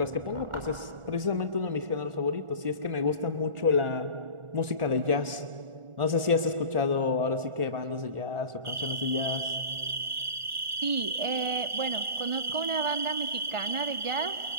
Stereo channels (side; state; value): left; late; 1.4 ms